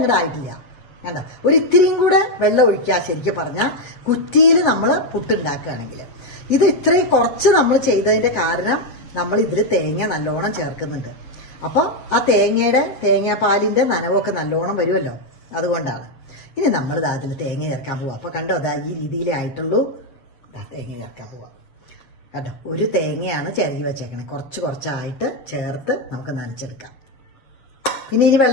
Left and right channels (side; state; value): right; late; 7.4 ms